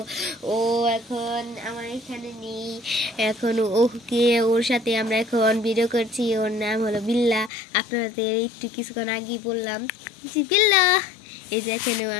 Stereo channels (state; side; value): drops out; right; at 7.5 s